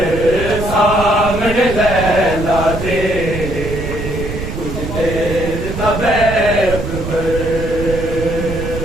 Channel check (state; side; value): noise; right; rumble, 6 dB below the sound